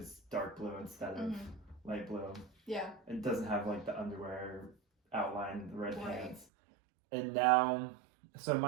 dark blue instead of light blue. Yeah. It doesn't have like the underwear outline, the red pants. And now, so in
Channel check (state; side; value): drops out; left; at 6.5 s